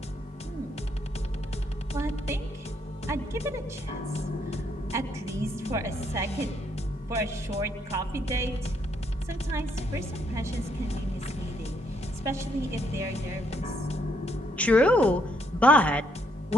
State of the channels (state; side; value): normal; both; correlation 0.72